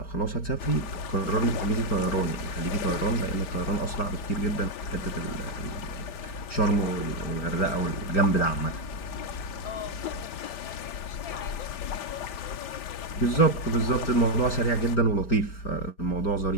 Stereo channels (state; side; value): late; right; 5.1 ms